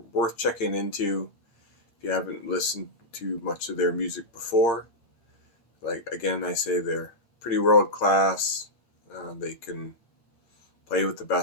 worth checking into if you haven't listened to much of their music before. Like, again, I say they're pretty world-class. They can play with the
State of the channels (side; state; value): right; late; 13 ms